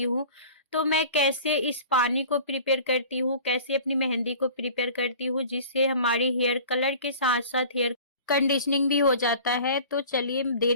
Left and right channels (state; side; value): inverted; both; correlation -0.43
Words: हूँ। तो मैं कैसे इस पानी को प्रिपेयर करती हूँ, कैसे अपनी मेहंदी को प्रिपेयर करती हूँ, जिससे हमारी हेयर कलर के साथ-साथ हेयर कंडीशनिंग भी हो जाता है। तो चलिए